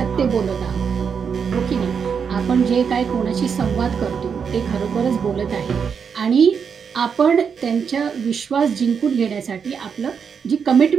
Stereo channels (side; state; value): left; quieter; 6.6 dB